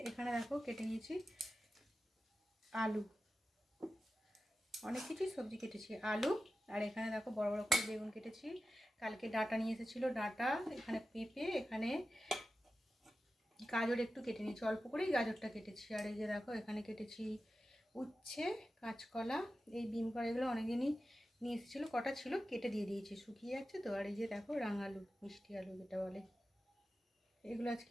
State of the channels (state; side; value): normal; both; correlation 0.93